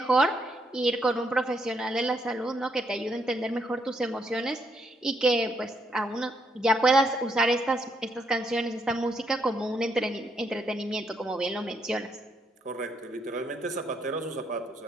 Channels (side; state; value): both; normal; correlation 0.75